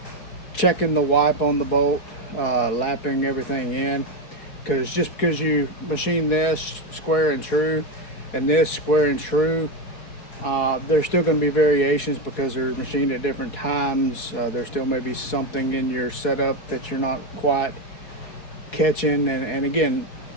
checking the wipe on the bolt, lapping everything in. Because just because you machine this square and true and this square and true, there's still going to be variations because they're machined at different times. There still may be something in your setup that you're not quite catching. And again,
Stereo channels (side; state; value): right; late; 4.7 ms